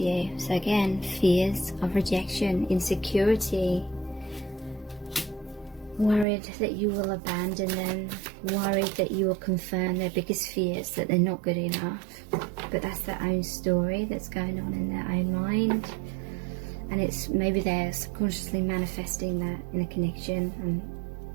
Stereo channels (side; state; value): left; drops out; at 6.2 s